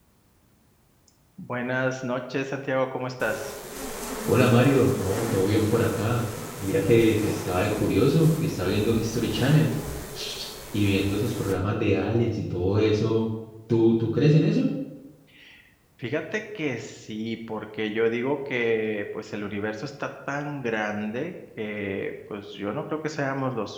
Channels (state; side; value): identical; both; correlation 1.00